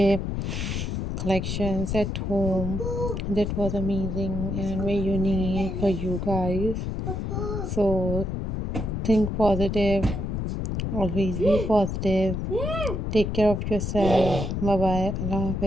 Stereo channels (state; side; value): noise; left; rumble, 2 dB below the sound